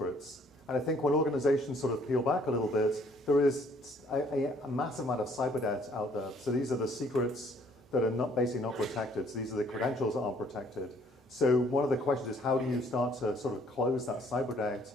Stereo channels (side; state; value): both; normal; correlation 0.62